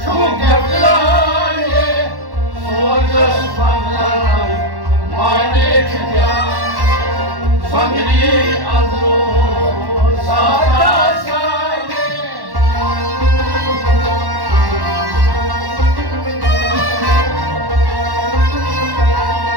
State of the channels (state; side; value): late; left; 1.1 ms